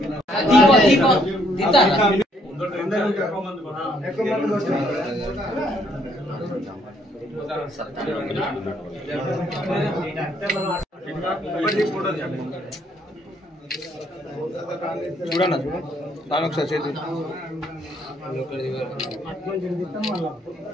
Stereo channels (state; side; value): normal; both; correlation 0.68